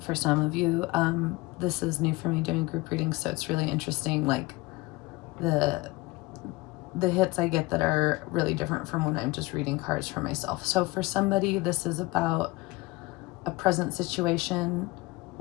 for some of you, this is new for me doing group readings, so it's really interesting, like the hits I get that are really different from when I'm just reading cards for myself. So for somebody, this is about a present situation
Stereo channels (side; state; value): right; quieter; 21.8 dB